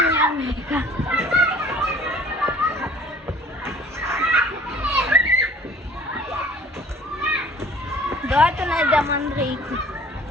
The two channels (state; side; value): normal; both; correlation 0.50